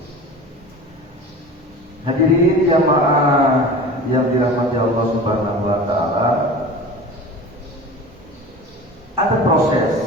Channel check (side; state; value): both; normal; correlation 0.35